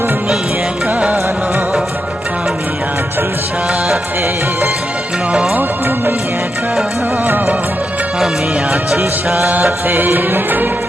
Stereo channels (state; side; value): normal; both; correlation 0.85